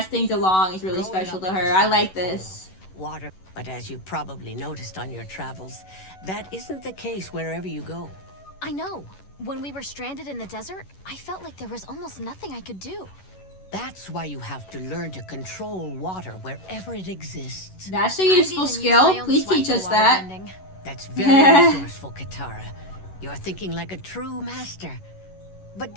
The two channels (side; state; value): right; late; 11 ms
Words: things along is really Growing special up to in her. the I like South this. Water, but as you probably noticed on your travels, that isn't the case wherever you go. I know. When we were stranded in the desert, I felt like there was almost nothing I could do. That's why you have to learn to control water wherever it exists. That's a I've useful even used skill. my own Please sweat teach for us that. waterbending. That's very resourceful, Katara. You're thinking like a true master. But